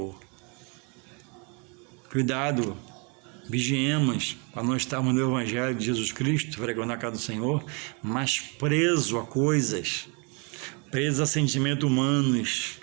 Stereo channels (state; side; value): quieter; left; 33.8 dB